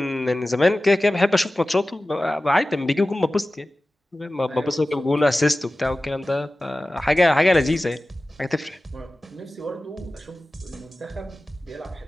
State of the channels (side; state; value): both; normal; correlation 0.96